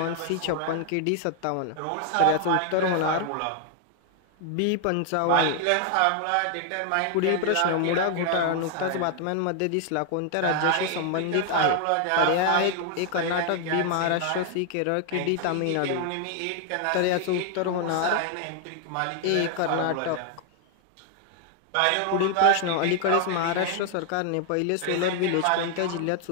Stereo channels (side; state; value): both; different; correlation 0.00